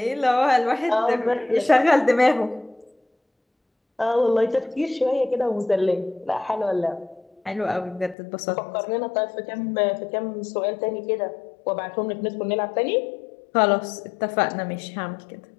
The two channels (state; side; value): drops out; right; at 8.2 s